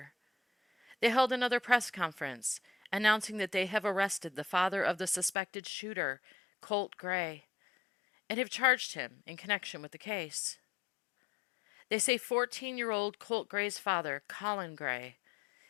They held another press conference announcing that they have arrested the father of the suspected shooter, Colt Gray, and have charged him in connection with the case. They say 14-year-old Colt Gray's father, Colin Gray,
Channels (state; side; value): drops out; right; at 5.4 s